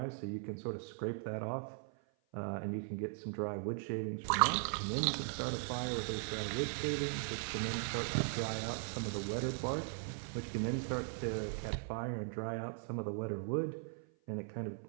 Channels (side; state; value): left; silent; 52 dB below the other